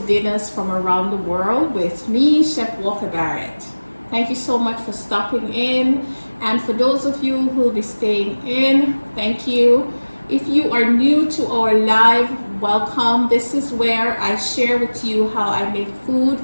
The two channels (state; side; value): inverted; both; correlation -1.00